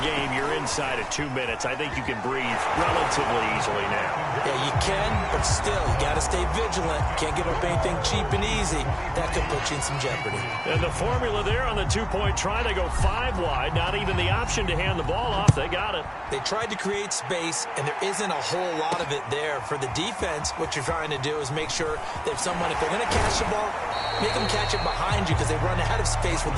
game. You're inside of 2 minutes. I think you can breathe relatively easily now. Yeah, you can, but still, you got to stay vigilant. Can't give up anything cheap and easy. That could put you in some jeopardy. And the formula there on the 2-point try, they go 5 wide. Not even the option to hand the ball off. They got it. They tried to create space, and there isn't a whole lot of it there. For the defense, what you're trying to do is make sure that if they're going to catch the ball, make them catch it behind you because they run out of space with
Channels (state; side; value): identical; both; correlation 1.00